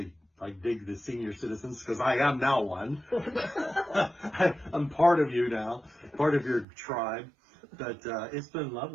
I dig the senior citizens because I am now one. I'm part of you now, part of your tribe. But it's been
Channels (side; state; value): left; drops out; at 6.7 s